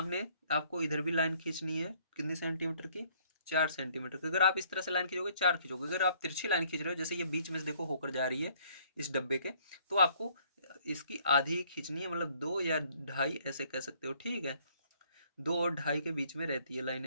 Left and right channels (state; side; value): inverted; both; correlation -0.62